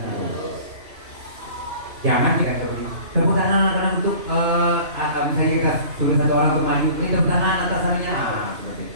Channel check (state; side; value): late; left; 2.9 ms